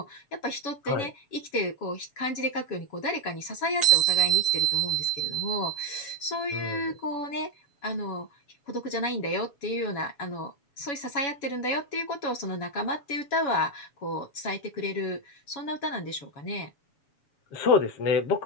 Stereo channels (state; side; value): late; right; 7.1 ms